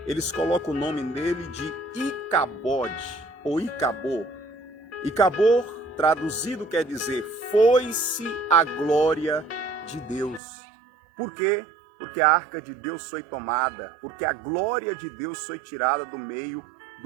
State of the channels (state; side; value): drops out; left; at 10.4 s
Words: eles colocam o nome dele de Icabode, ou Icabô. Icabô, traduzido, quer dizer, foi-se a glória de Deus. Por quê? Porque a arca de Deus foi tomada, porque a glória de Deus foi tirada do meio